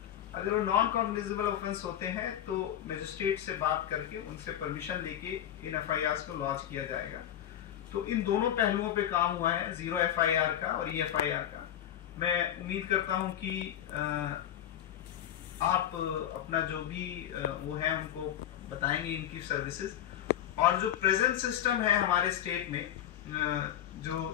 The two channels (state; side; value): quieter; right; 11.0 dB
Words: अगर वो नॉन कॉग्निजेबल ऑफेंस होते हैं तो मजिस्ट्रेट से बात करके उनसे परमिशन लेके इन एफआईआर को लॉन्च किया जाएगा। तो इन दोनों पहलुओं पे काम हुआ है, जीरो एफआईआर का और ईएफआईआर का। मैं उम्मीद करता हूं कि आप अपना जो भी वो है उनको बताएंगे इनकी सर्विसेज। और जो प्रेजेंट सिस्टम है हमारे स्टेट में,